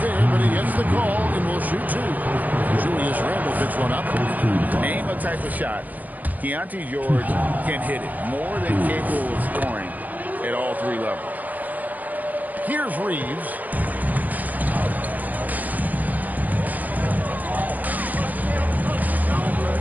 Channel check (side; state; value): left; late; 0.080 ms